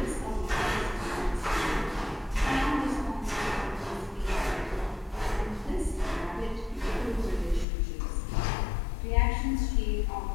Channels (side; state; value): right; drops out; at 7.7 s